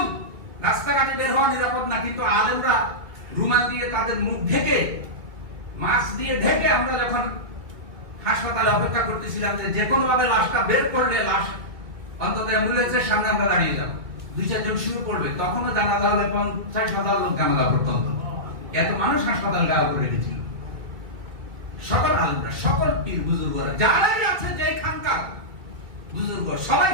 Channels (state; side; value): late; left; 2.0 ms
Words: রাস্তাঘাটে বের হওয়া নিরাপদ না, কিন্তু আলেমরা রুমাল দিয়ে তাদের মুখ ঢেকে, মাস্ক দিয়ে ঢেকে, আমরা যখন হাসপাতালে অপেক্ষা করতেছিলাম যে কোনো ভাবে লাশটা বের করলে লাশ অন্তত অ্যাম্বুলেন্সের সামনে আমরা দাঁড়িয়ে যাবো, 2-4 জন শুরু করবে, তখনও জানাজা হলে 50,000 লোক জানাজা পর্যন্ত, এত মানুষ হাসপাতাল গায়ে করে রেখেছিল। সকল আলেমরা, সকল পীর বুজুর্গরা, যারাই আছে যে খানকার বুজুর্গ, সবাই